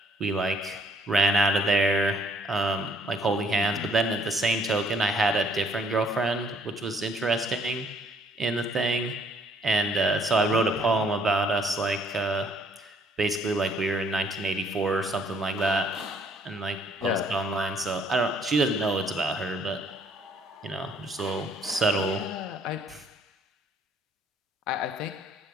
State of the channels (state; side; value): normal; both; correlation 0.64